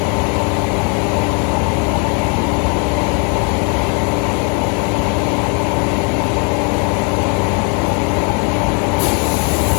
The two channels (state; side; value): quieter; right; 36.8 dB